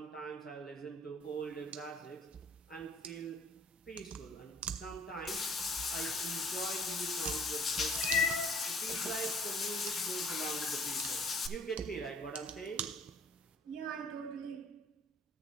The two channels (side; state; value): both; normal; correlation 0.53